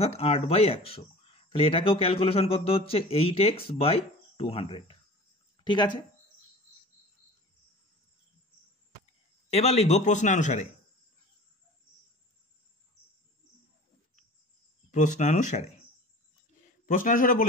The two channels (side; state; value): both; normal; correlation 0.40